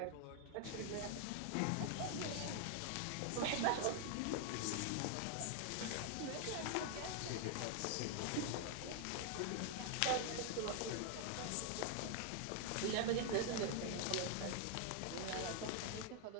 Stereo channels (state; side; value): different; both; correlation 0.00